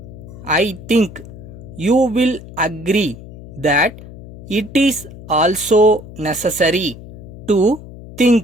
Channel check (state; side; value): noise; left; hum, 15 dB below the sound